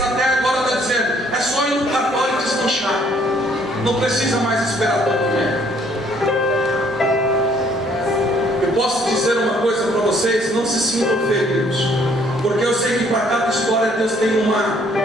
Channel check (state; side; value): normal; both; correlation 0.63